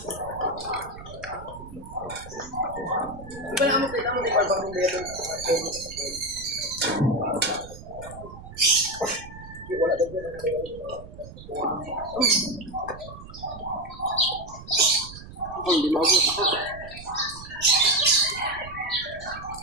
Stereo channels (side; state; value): right; noise; rumble, 15 dB below the sound